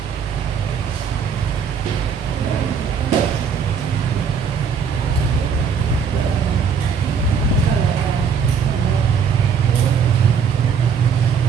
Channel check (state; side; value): quieter; left; 6.5 dB